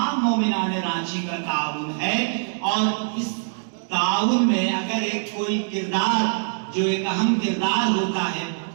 مومنان رانچی کا تعاون ہے، اور اس تعاون میں اگر ایک کوئی کردار جو ایک اہم کردار ہوتا ہے،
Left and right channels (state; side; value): silent; left; digital silence